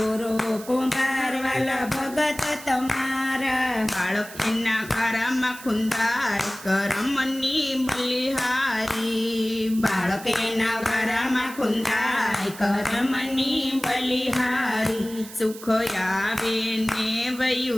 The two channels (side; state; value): right; noise; hiss, 16 dB below the sound